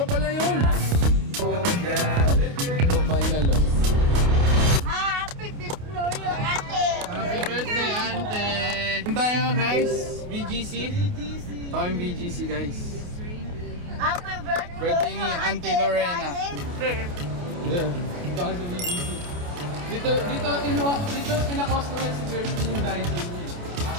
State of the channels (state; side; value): late; left; 28 ms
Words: pala yun! Ito final loss. Happy birthday, Ate! Happy birthday, Ante! Tayo guys, BGC. Ito yung BGC guys. Happy birthday, Birthday ni Auntie Lorena. Yeah. Ito kayo sa BGC. Dito pina-customize si Kirsten yung Dyson niya.